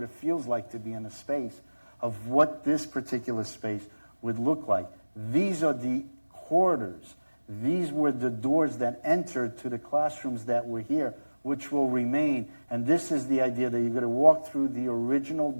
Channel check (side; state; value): both; inverted; correlation -1.00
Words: it feels like to be in a space of what this particular space would look like. These are the corridors. These were the doors that entered to the classrooms that were here, which will remain. And this is the idea that you're going to walk through the original